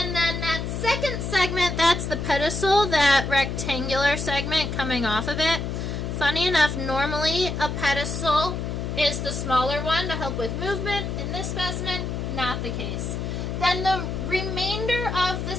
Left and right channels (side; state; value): left; noise; hum, 3 dB below the sound